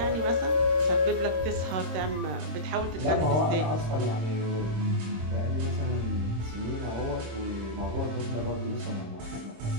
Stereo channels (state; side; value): late; left; 26 ms